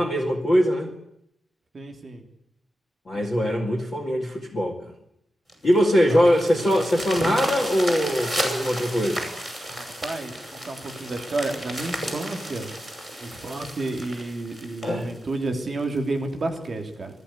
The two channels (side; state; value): both; normal; correlation 0.91